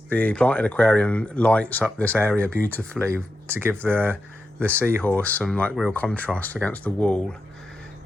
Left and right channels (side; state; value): both; normal; correlation 0.88